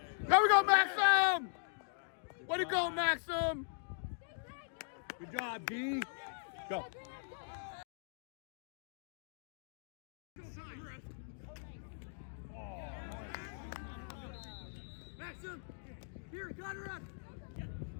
There we go, Maxim. Way to go, Maxim. Good job, D. Go. Maxim, here, cut her up.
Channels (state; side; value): silent; right; digital silence